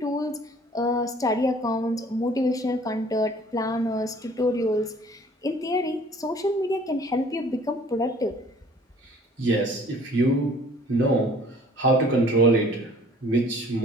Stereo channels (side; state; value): both; normal; correlation 0.53